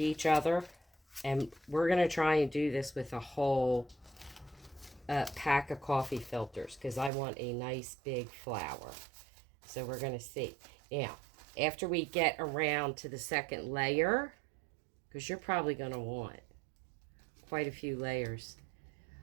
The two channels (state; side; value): drops out; left; at 7.1 s